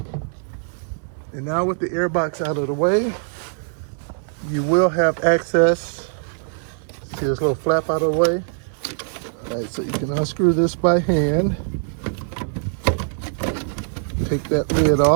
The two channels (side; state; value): left; silent; 64 dB below the other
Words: And now with the air box out of the way, you will have access. See this little flap out of the way? All right, so you can unscrew this by hand. Take that lid